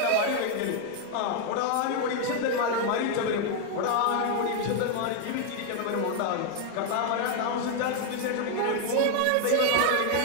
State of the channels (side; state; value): both; different; correlation 0.00